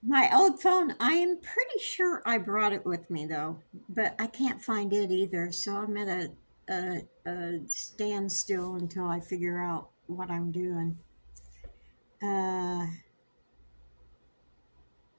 My old phone, I am pretty sure I brought it with me though, but I can't find it either. So I'm at a standstill until I figure out what I'm doing. Uh,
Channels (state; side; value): inverted; both; correlation -1.00